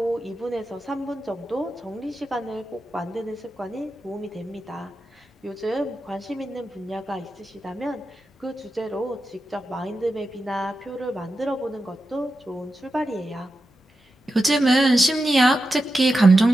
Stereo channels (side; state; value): both; normal; correlation 0.90